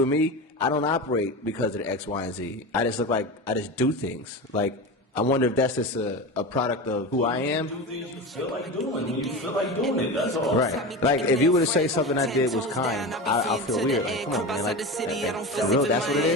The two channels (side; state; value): both; normal; correlation 0.25